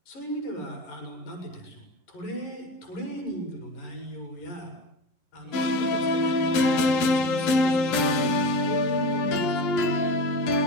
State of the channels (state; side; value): late; right; 11 ms